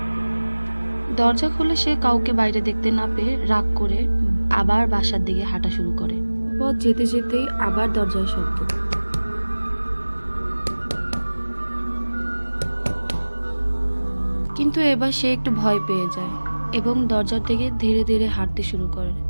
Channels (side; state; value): both; inverted; correlation -1.00